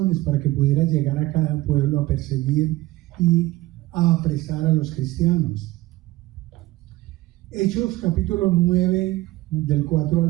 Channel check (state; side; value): quieter; left; 17.9 dB